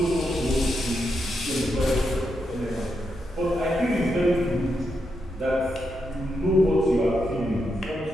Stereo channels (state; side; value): normal; both; correlation 0.83